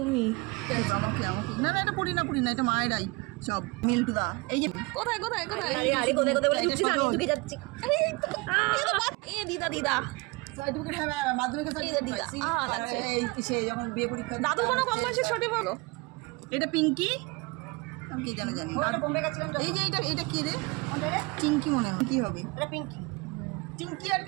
না না, এটা পুরি না, এটা মায়েরাই সব মিল্টুদা। এই যে কোথায় কোথায় কোথায় আরে কোথায় কোথায় বলে ঢুকছিস, আমি ঢুকে যাচ্ছি। আরে এই দিদা দিদা সার্টিফিকেট হবে মাধ্যমিকের সার্টিফিকেট দিদা। আচ্ছা, এই কিসে যখন বিয়ে পরীক্ষা দাদু কোনো কম বয়সে ছোট বলো। এটা পিঙ্কি, আমি কি জানি ওটা বোম্বে গেছিলাম। এই যে এটা কি রে? কোনটা রে? টিঙ্কি মনে হয়। কি হবে এটা? পিঙ্কি, টিঙ্কি আর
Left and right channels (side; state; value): left; quieter; 26.5 dB